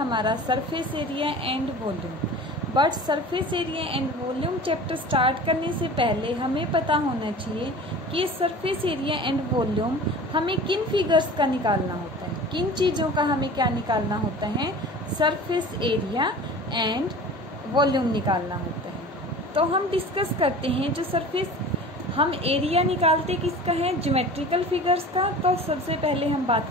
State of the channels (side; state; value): both; normal; correlation 0.39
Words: surface area and volume. But surface area and volume chapter start करने से पहले हमें पता होना चाहिए कि सरफेस एरिया एंड वॉल्यूम हमें किन फिगर्स का निकालना होता है, किन चीज़ों का हमें क्या निकालना होता है, सरफेस एरिया एंड वॉल्यूम निकालना होता है। तो हम डिस्कस करते हैं जो सरफेस हम एरिया निकालते किसका है, ज्योमेट्रिकल फिगर्स का। तो सबसे पहले हम